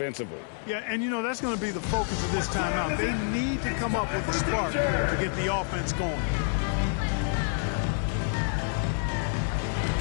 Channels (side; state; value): right; silent; 56 dB below the other